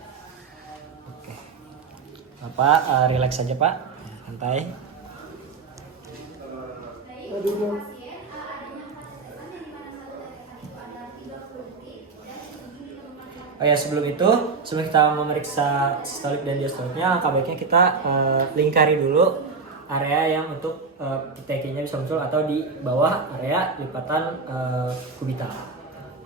Oke, Bapak relax saja Pak, santai. Oh ya, sebelum kita memeriksa sistolik dan diastoliknya, langkah baiknya kita lingkari dulu area yang untuk PTK-nya bisa muncul atau di bawah area lipatan kubital.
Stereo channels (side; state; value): left; quieter; 4.6 dB